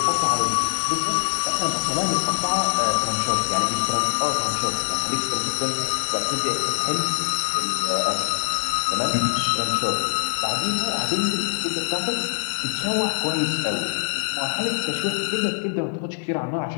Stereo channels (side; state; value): right; silent; digital silence